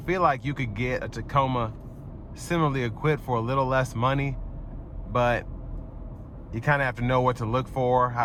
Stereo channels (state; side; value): identical; both; correlation 1.00